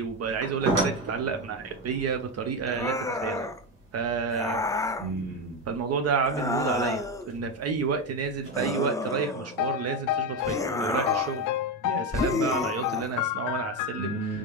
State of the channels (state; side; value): normal; both; correlation 0.13